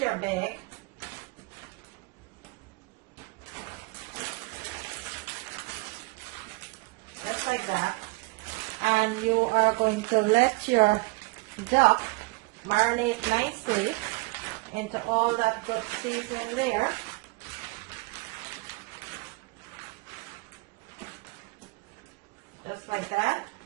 your bag. Just like that. And you are going to let your duck marinate nicely into all that good seasoning there. just like that.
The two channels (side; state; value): left; quieter; 25.3 dB